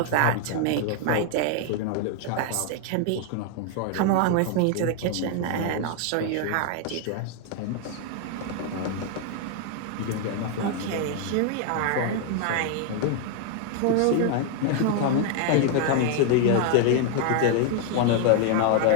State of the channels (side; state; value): both; different; correlation 0.00